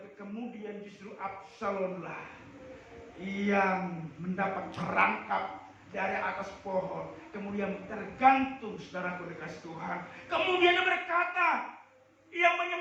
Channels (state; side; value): identical; both; correlation 1.00